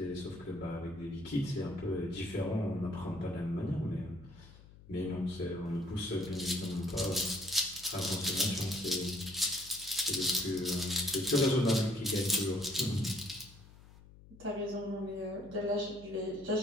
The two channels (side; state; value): left; noise; hum, 21 dB below the sound